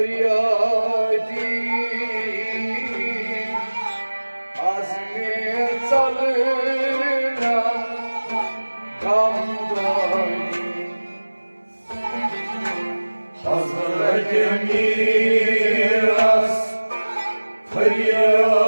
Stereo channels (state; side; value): inverted; both; correlation -1.00